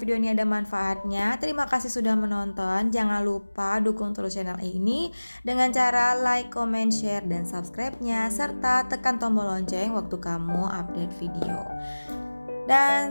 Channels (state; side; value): inverted; both; correlation -1.00